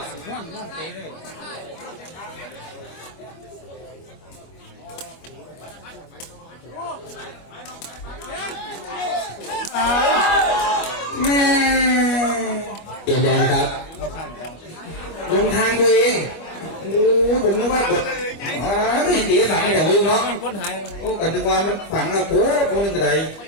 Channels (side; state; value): right; late; 25 ms